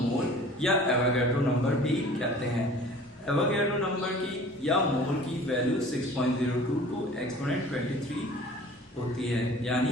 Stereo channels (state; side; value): normal; both; correlation 0.46